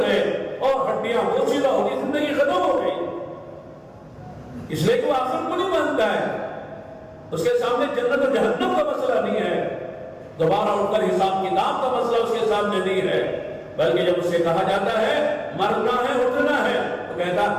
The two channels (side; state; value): both; identical; correlation 1.00